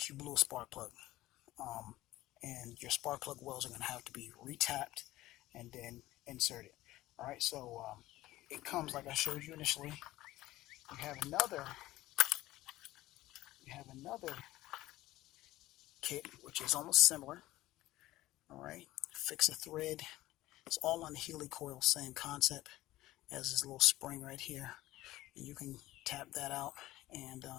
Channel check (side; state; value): right; quieter; 16.6 dB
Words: you blew a spark plug. And your spark plug wells are going to have to be retapped and then inserted. All right, so it comes like I showed you initially. You have another kit which is almost similar. All right, fix a thread. It's all on the helicoil, same concept as this little spring right here. And you can tap that out, and